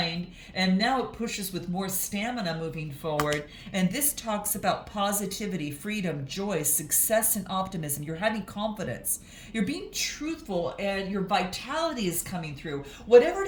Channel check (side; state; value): both; identical; correlation 1.00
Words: and now it pushes with more stamina moving forward. And this talks about positivity, freedom, joy, success, and optimism. You're having confidence. You're being truthful, and your vitality is coming through. Whatever